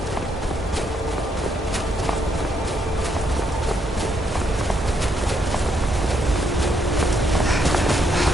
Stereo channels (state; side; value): normal; both; correlation 0.75